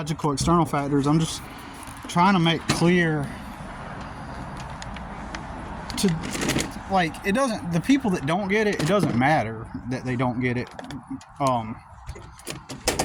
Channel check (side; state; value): both; identical; correlation 1.00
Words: external factors, I'm just trying to make clear to, like, it doesn't, the people that don't get it, it doesn't matter that they don't get it.